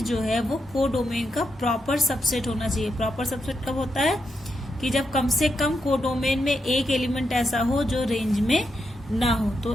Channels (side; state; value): both; normal; correlation 0.84